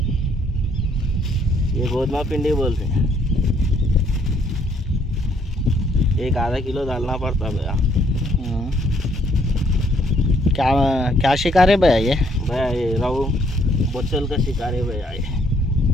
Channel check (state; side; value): normal; both; correlation 0.67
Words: ये गोदमा पिंडी बोलते हैं। एक आधा किलो डालना पड़ता भैया। क्या क्या शिकार है भैया ये? भैया ये रहू बोचल का शिकार है भैया ये।